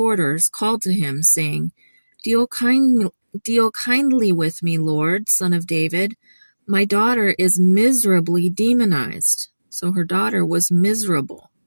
called to him, saying, Deal kindly with me, Lord, Son of David. My daughter is miserably demonized. So her daughter was miserable.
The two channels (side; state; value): both; inverted; correlation -1.00